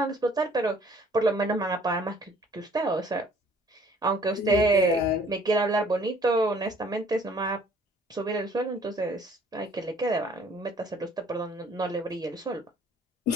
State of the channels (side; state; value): both; normal; correlation 0.56